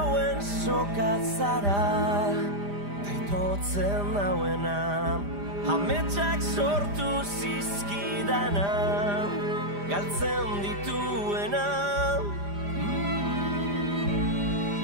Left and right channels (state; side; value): late; left; 5.0 ms